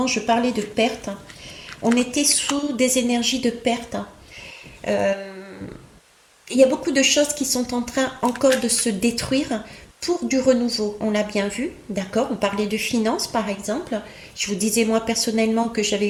je parlais de perte. On était sous des énergies de perte. Il y a beaucoup de choses qui sont en train encore de se détruire pour du renouveau. On l'a bien vu, d'accord? On parlait de finances, par exemple. Je vous disais, moi, personnellement, que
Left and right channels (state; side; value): identical; both; correlation 1.00